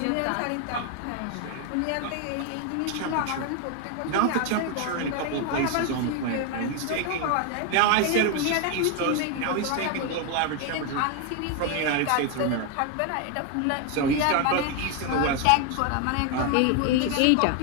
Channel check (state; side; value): different; both; correlation 0.01